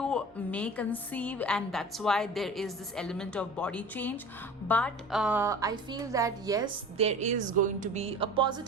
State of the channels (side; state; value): both; normal; correlation 0.38